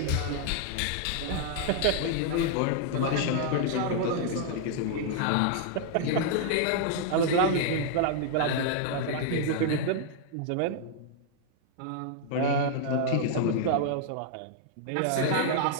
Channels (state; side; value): different; both; correlation -0.01